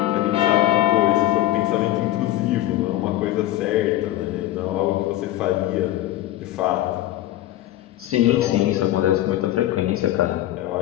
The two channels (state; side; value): quieter; right; 14.8 dB